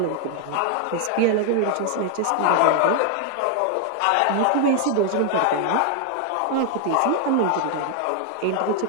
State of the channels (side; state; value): both; different; correlation 0.00